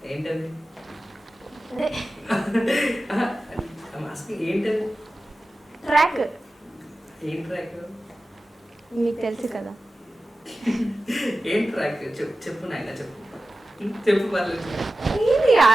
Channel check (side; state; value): both; normal; correlation 0.95